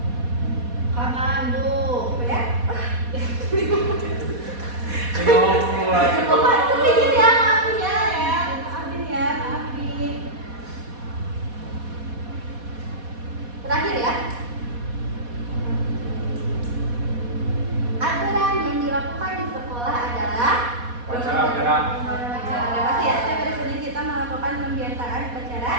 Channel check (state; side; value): late; left; 4.2 ms